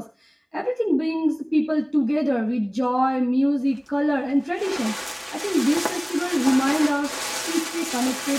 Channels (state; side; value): identical; both; correlation 1.00